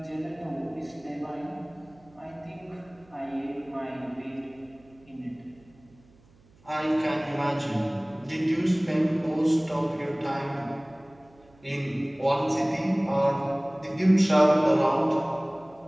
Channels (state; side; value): noise; right; hum, 29 dB below the sound